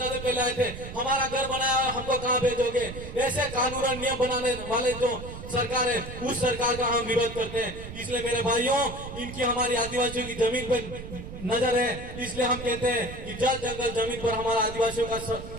पहले आए थे? हमारा घर बनाया और हमको कहाँ भेजोगे? ऐसे कानून और नियम बनाने वाले जो सरकार है उस सरकार का हम विरोध करते हैं। इसलिए मेरे भाइयों, इनकी हमारी आदिवासियों की जमीन पर नजर है, इसलिए हम कहते हैं कि जल जंगल जमीन पर हमारा आदिवासियों का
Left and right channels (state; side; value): noise; right; rumble, 11 dB below the sound